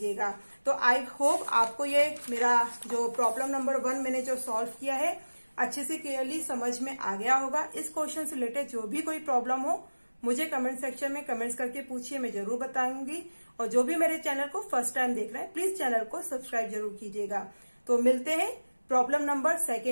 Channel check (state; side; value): inverted; both; correlation -1.00